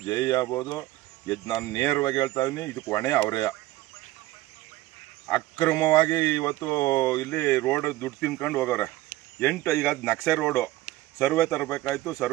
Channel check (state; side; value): quieter; left; 17.0 dB